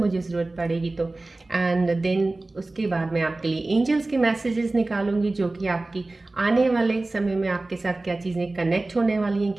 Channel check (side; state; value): left; quieter; 3.0 dB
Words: ज़रूरत पड़ेगी तो। एंड देन उसके बाद मैं आपके लिए एंजल्स के मैसेजेस निकालूंगी जो कि आपकी आने वाले समय में आपके साथ क्या चीज़ें कनेक्ट होने वाली हैं,